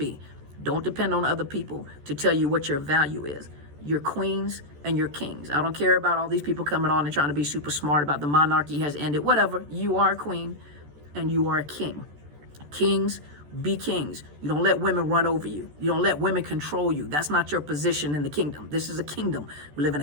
Don't depend on other people to tell you what your value is. You're queens and you're kings. I don't care about all these people coming on and trying to be super smart about the monarchy has ended. Whatever. You are a queen and you are a king. Kings, be kings. You don't let women run over you. You don't let women control you. That's not your position in the kingdom. This is a kingdom. We live in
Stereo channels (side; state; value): left; late; 14 ms